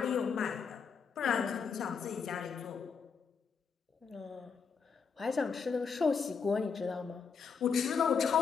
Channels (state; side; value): quieter; right; 5.9 dB